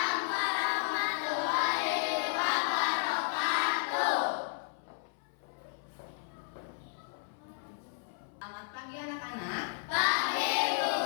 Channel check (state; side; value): silent; right; 56 dB below the other